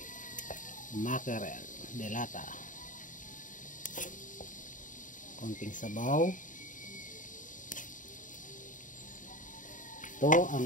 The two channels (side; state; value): right; late; 0.38 ms